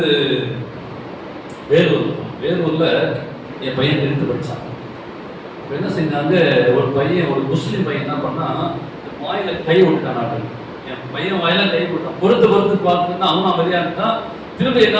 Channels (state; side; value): identical; both; correlation 1.00